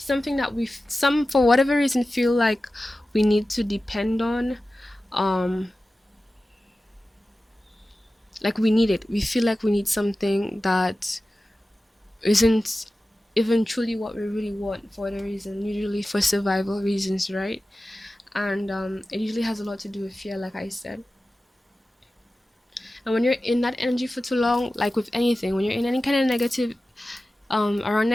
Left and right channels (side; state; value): both; normal; correlation 0.95